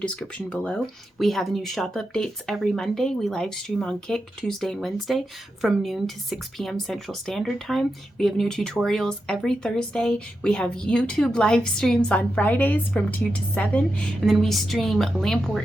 below. We have new shop updates every Monday. We live stream on Kick Tuesday and Wednesday from noon to 6 p.m. Central Standard Time. We have new tutorials every Thursday. We have YouTube live streams on Fridays from 2 to 7. And then we stream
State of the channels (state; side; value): normal; both; correlation 0.88